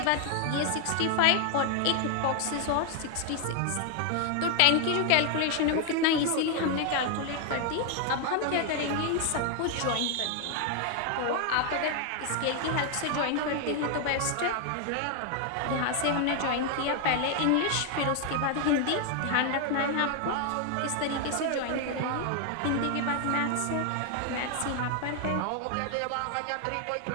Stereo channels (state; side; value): different; both; correlation 0.00